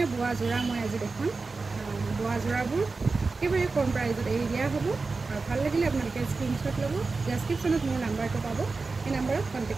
বোৱা যোৰা মই আজি দেখুৱাম। বোৱা যোৰাবোৰ একেবাৰে কম প্ৰাইজত এৰি দিয়া হ'ব। আৰু ভাল লাগিলে আপোনালোকে স্ক্ৰীনশ্বট ল'ব, ডেছক্ৰিপশ্যনত মোৰ নাম্বাৰটো পাব, সেই নাম্বাৰত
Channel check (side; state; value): left; quieter; 4.0 dB